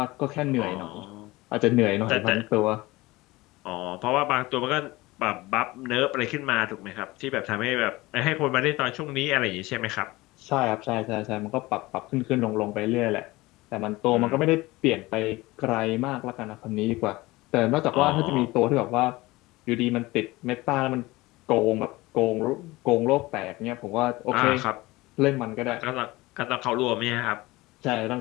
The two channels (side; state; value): right; quieter; 20.6 dB